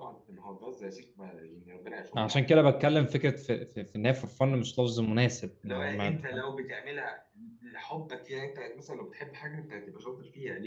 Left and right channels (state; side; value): identical; both; correlation 1.00